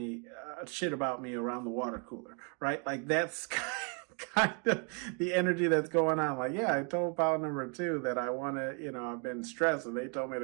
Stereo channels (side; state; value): left; quieter; 37.5 dB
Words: me around the water cooler, right? Like that's kind of the energy that's going on. Like, yeah, I told pile number 2 that I want to, I've been stressed and they told me